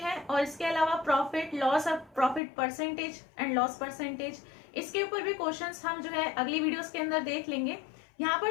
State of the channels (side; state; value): right; drops out; at 2.4 s